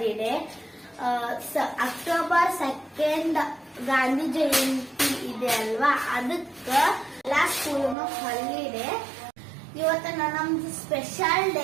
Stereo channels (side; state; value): left; drops out; at 8.0 s